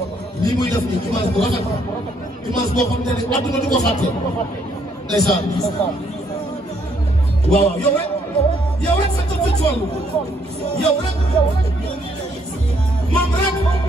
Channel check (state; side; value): normal; both; correlation 0.70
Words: lii muy def nii image bu rafet image boo xam ne adduna du ko fàtte ndeysaan waaw yow rek sa tëj ci wàllu yow rek moom